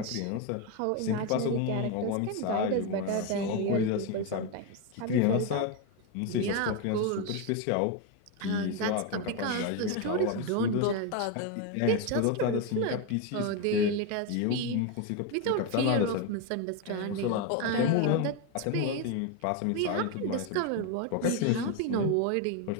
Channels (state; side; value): different; both; correlation 0.02